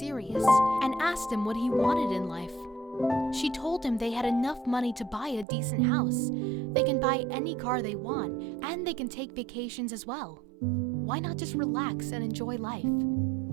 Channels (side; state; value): left; drops out; at 5.5 s